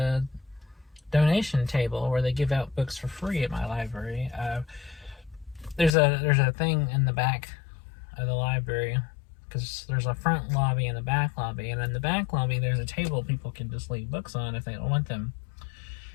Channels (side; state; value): right; drops out; at 5.9 s